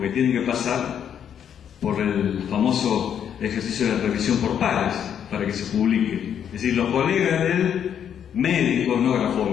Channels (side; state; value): right; quieter; 8.8 dB